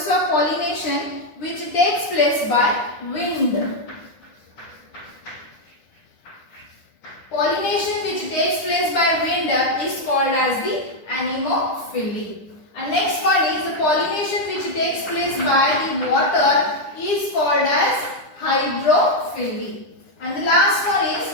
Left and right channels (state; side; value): late; right; 9.9 ms